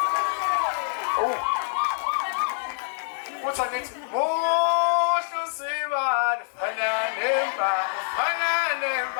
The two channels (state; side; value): silent; right; 61 dB below the other